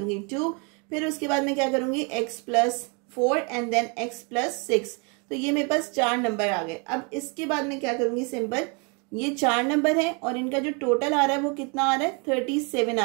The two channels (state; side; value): quieter; left; 33.6 dB